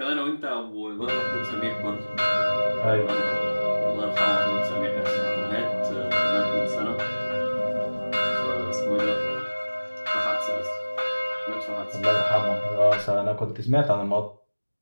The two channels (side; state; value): both; inverted; correlation -1.00